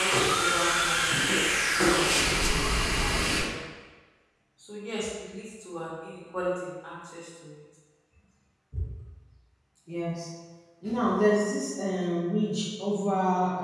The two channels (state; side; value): identical; both; correlation 1.00